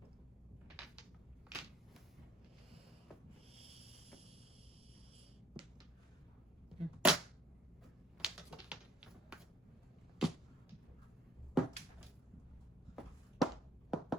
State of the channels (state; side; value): normal; both; correlation 0.58